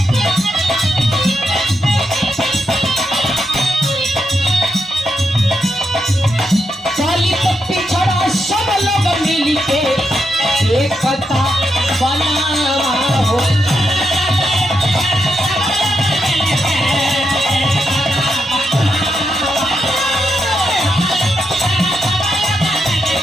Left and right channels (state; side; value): normal; both; correlation 0.83